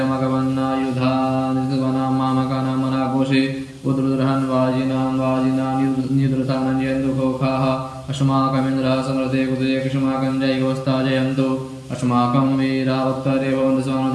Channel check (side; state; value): both; identical; correlation 1.00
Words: मामकानां मनाघोषे उद्रुद्रहन् वाजिनां निद्रतानञ्जयन्दुघोखाः अस्माकमिन्द्रः समृते कुतये कृष्माकं जयगोस्ता जयन्तु अस्माकं वीरावक्तरे भवन्तु